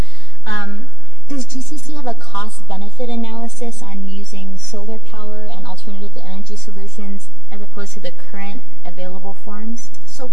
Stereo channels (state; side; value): late; right; 4.2 ms